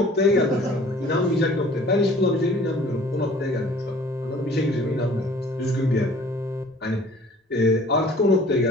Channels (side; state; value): both; normal; correlation 0.51